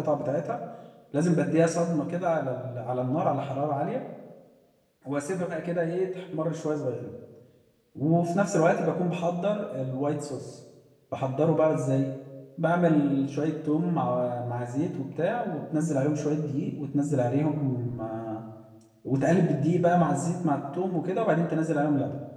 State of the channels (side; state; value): both; identical; correlation 1.00